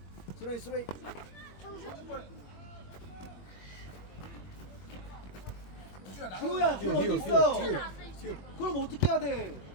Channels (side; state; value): right; late; 21 ms